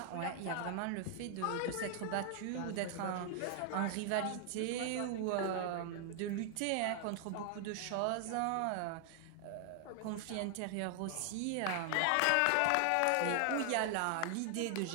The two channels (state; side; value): different; both; correlation 0.00